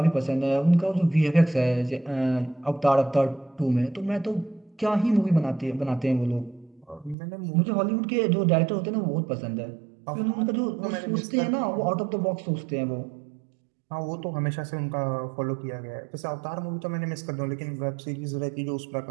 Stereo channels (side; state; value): left; drops out; at 7.2 s